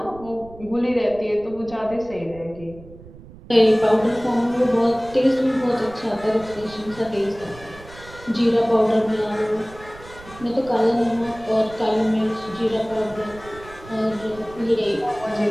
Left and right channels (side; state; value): right; noise; rumble, 19 dB below the sound